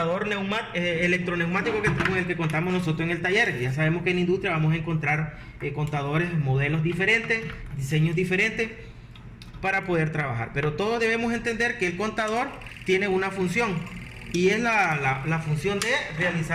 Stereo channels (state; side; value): identical; both; correlation 1.00